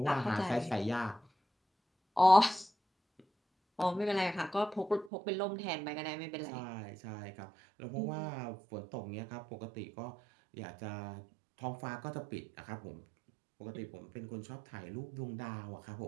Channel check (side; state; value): left; drops out; at 5.1 s